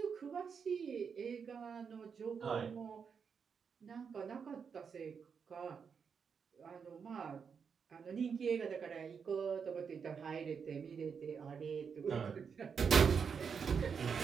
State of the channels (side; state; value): left; quieter; 6.3 dB